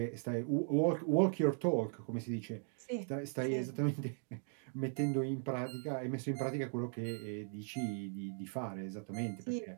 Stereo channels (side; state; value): left; silent; 52 dB below the other